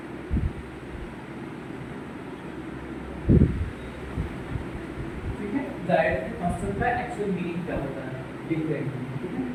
ठीक है, direct constant का actual meaning क्या होता है लिख रहे हैं. ठीक है,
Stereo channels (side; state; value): both; identical; correlation 1.00